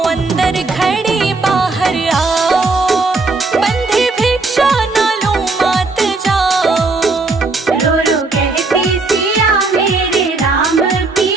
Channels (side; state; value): left; quieter; 3.6 dB